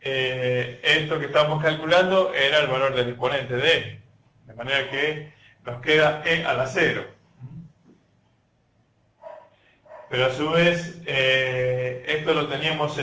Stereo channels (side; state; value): both; identical; correlation 1.00